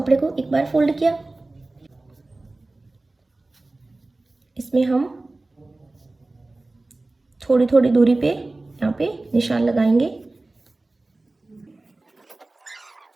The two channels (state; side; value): quieter; left; 3.0 dB